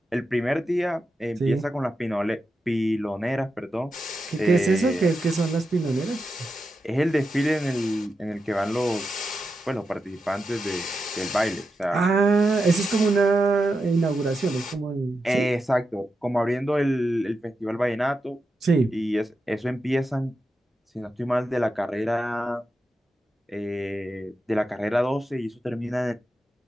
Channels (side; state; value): both; normal; correlation 0.88